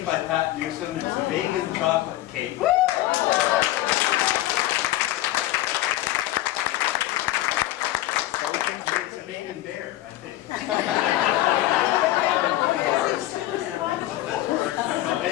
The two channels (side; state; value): right; quieter; 15.5 dB